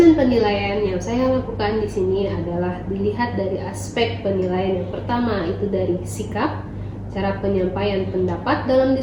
penilaian yang saya lakukan di sini adalah dilihat dari aspek penilaian. Yang pertama itu dari sikap, cara penyampaian pendapat dalam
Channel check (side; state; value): both; identical; correlation 1.00